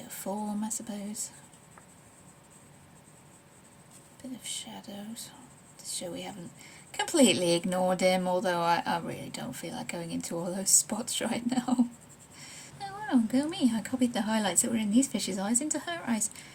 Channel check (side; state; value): both; identical; correlation 1.00